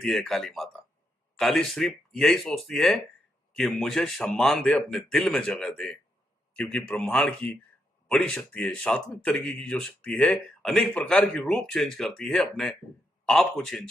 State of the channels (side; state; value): both; normal; correlation 0.80